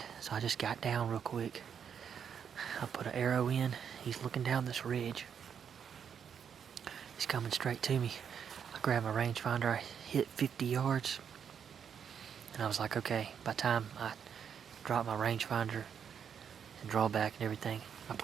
so I just got down real quick. I put an arrow in. He's looking down this ridge. He's coming straight to me. I grabbed my rangefinder. I hit 50 yards. And I was like, okay, by the time I drop my rangefinder and draw back and everything, I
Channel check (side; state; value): left; quieter; 7.7 dB